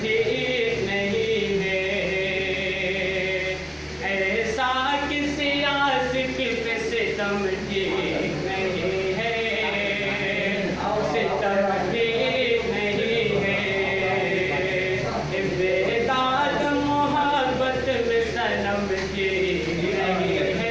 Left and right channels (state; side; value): identical; both; correlation 1.00